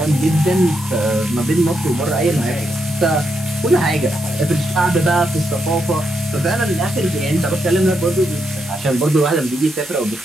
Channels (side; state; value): both; normal; correlation 0.81